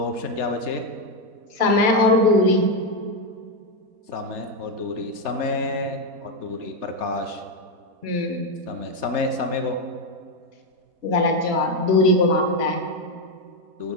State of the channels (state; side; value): late; left; 4.2 ms